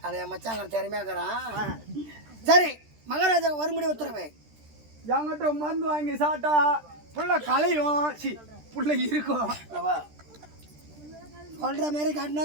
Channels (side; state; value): left; late; 13 ms